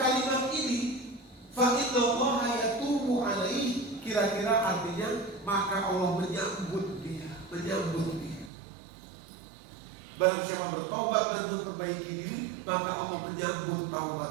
ini, fa innallaha yatubu alaihi, kira-kira artinya maka Allah menyambut dia. Barang siapa bertaubat dan memperbaiki diri, maka Allah menyambut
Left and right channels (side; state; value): left; drops out; at 8.5 s